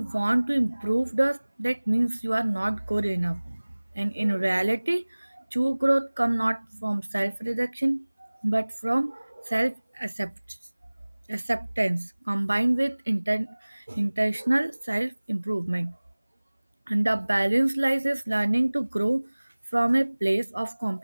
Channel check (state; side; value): inverted; both; correlation -1.00